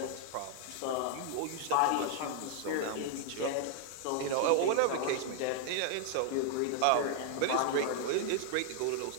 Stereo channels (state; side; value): different; both; correlation 0.00